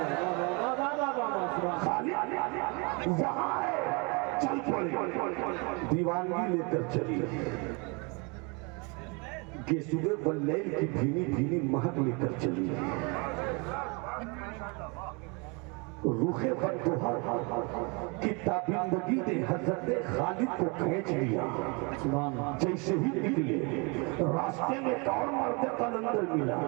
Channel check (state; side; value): quieter; left; 31.0 dB